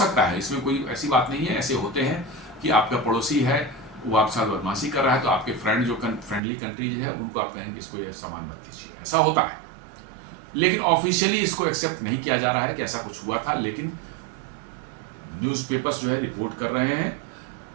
है, इसमें कोई ऐसी बात नहीं है। ऐसे होते हैं कि आपका पड़ोसी है वो आपके साथ बदमाशी कर रहा है तो आपके फ्रेंड जो फ्रेंडली कंट्रीज है उनको आप कहेंगे इसको ये सामान मत दीजिए, ऐसा होता है। लेकिन ऑफिशियली इसको एक्सेप्ट नहीं किया जा रहा है कि ऐसा कुछ हुआ था, लेकिन न्यूज़पेपर्स जो है रिपोर्ट कर रहे हैं।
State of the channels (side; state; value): left; drops out; at 6.4 s